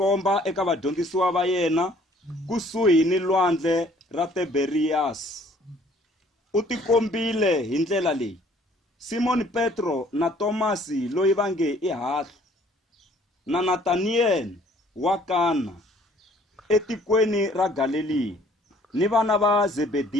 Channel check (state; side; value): normal; both; correlation 0.58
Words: eka vadyondzisiwa va yena kusuhi ni lwandle ra Tiberiyasi. U tikombile hi ndlela leyi: Simon Petro na Tomasi loyi va nge i Hahla, na Nataniyeli wa Kana etikweni ra Galileya, ni vana va